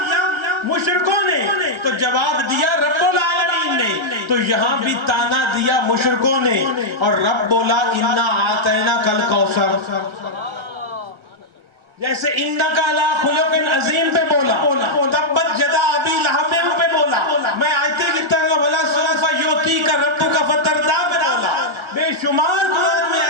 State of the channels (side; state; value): left; late; 1.4 ms